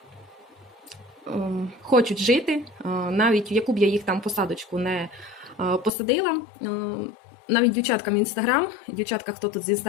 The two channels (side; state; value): right; drops out; at 5.9 s